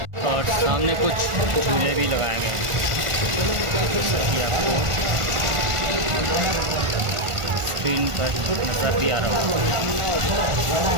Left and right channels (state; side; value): late; left; 1.5 ms